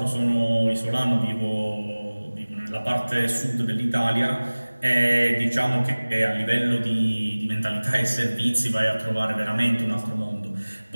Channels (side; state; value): both; inverted; correlation -1.00